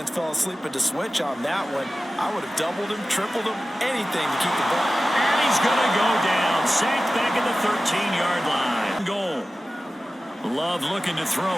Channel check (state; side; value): normal; both; correlation 0.95